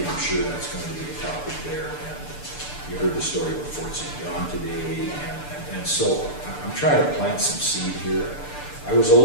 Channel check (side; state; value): right; late; 6.8 ms